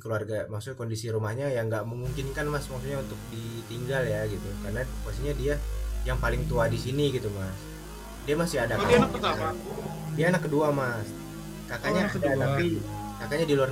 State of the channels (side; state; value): both; identical; correlation 1.00